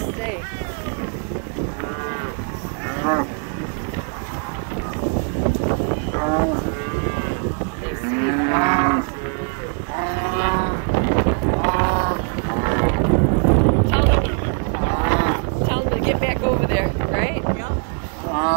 sake. They see. Tell them to get back over there, right? Yep.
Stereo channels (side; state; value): left; quieter; 39.1 dB